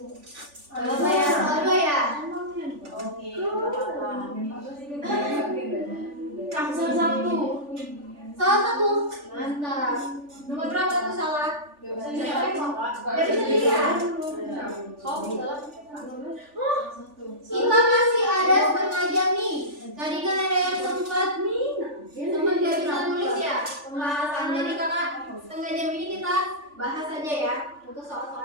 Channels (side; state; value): left; late; 3.4 ms